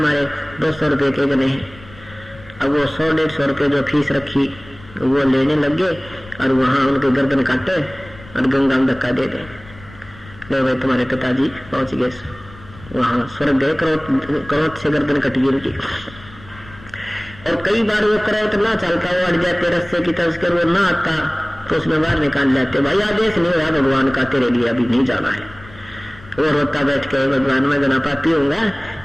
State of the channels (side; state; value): left; noise; rumble, 20 dB below the sound